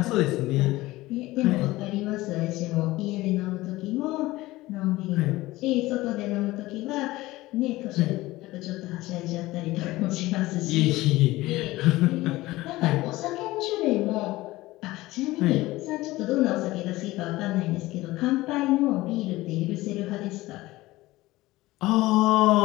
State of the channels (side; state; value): right; quieter; 18.5 dB